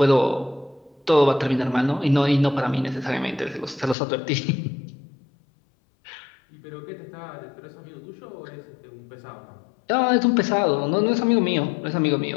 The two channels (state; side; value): drops out; right; at 4.0 s